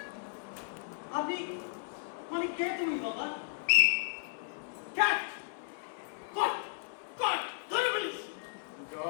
আপনি মানে কে তুমি বাবা? ক্যাট, কট, কট, ধরে ফেলিস।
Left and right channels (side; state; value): right; silent; 55 dB below the other